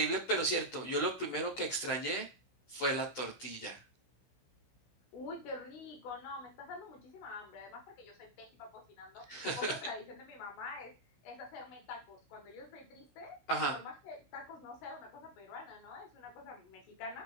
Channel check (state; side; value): late; right; 16 ms